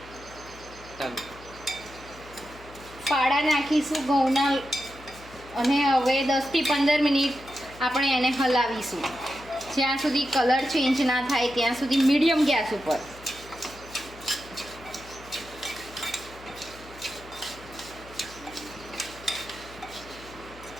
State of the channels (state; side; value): noise; left; hum, 20 dB below the sound